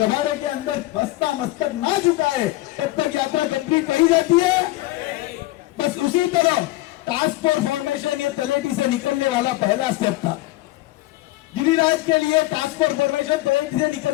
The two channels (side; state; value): right; quieter; 18.3 dB